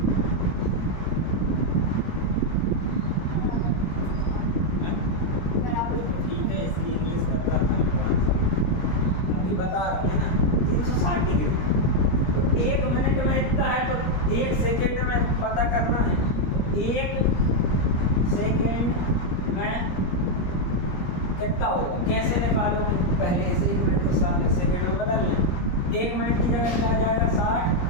ठीक है, इसकी इंग्लिश कर रहा था अभी बता रहे हैं ना, 360 डिग्री। तो 1 मिनट में इतना है, तो 1 सेकेंड में पता करना है। 1 सेकेंड में कितना होगा, कैसे निकालोगे, पहले से 1 मिनट को 60 सेकेंड में बदल लें। 1 मिनट की जगह क्या आ जाएगा, 60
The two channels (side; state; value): right; late; 17 ms